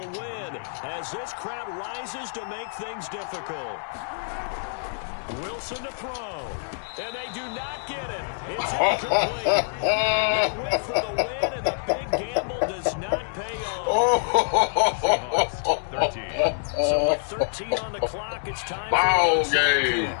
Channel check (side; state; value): right; silent; digital silence